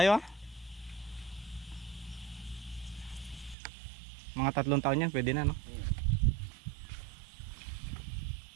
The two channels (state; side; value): drops out; left; at 3.6 s